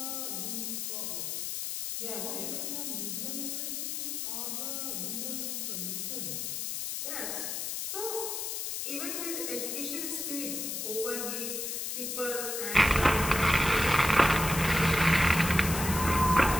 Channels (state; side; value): noise; left; hiss, 3 dB below the sound